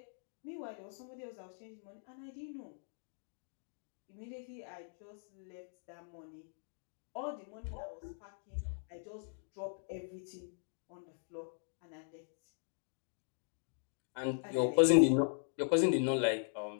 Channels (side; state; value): right; silent; digital silence